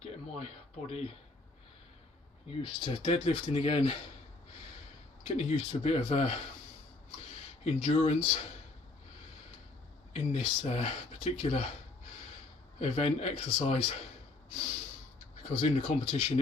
my body used to deadlifting again, getting used to a bit of endurance in this particular event exercise, because in the competition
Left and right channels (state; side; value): quieter; right; 3.3 dB